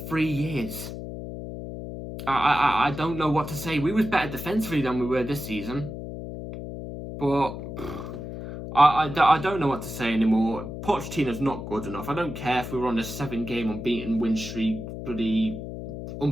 3 years. I don't know what to say. We was better defensively than we were this season. But I don't know what to say anymore. Pochettino's not good enough. I don't care if we were on a 7-game unbeaten win streak, bloody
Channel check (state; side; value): noise; left; hum, 8 dB below the sound